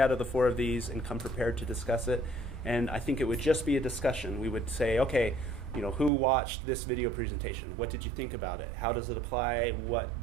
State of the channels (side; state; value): left; drops out; at 6.1 s